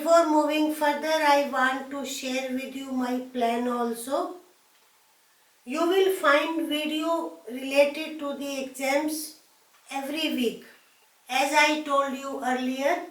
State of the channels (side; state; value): both; identical; correlation 1.00